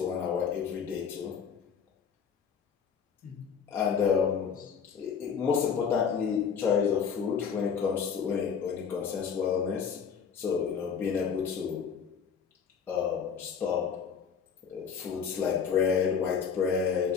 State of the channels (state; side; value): quieter; right; 6.7 dB